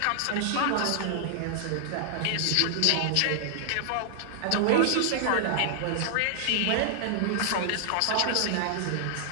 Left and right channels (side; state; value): both; different; correlation 0.00